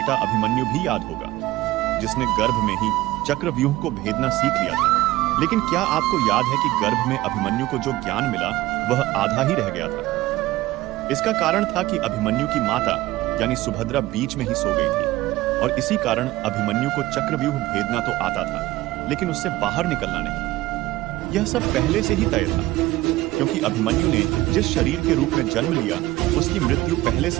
अभिमन्यु भी याद होगा, जिसने गर्भ में ही चक्रव्यूह को भेदना सीख लिया था। लेकिन क्या आपको याद है कि गर्भ में अभिमन्यु को जो ज्ञान मिला वह आधा ही रह गया था। इसका कारण था कि अभिमन्यु की माता यानी सुभद्रा बीच में ही सो गई थी, और इसी कारण अभिमन्यु को चक्रव्यूह भेदना तो आता था, लेकिन उससे बाहर निकलना नहीं। यह सब पहले से ही तय था, क्योंकि अभिमन्यु ने जिस शरीर के रूप में जन्म लिया उसकी मृत्यु पहले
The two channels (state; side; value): quieter; left; 17.3 dB